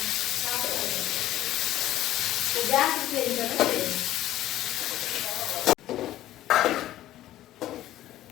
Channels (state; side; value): quieter; right; 14.0 dB